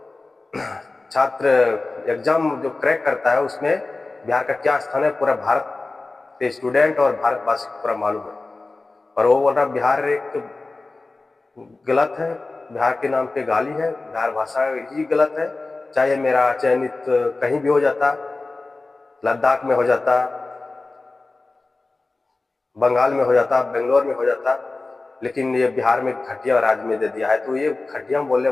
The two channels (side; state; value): right; quieter; 3.4 dB